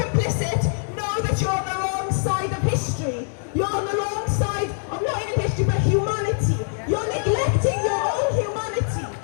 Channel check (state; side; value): silent; right; 63 dB below the other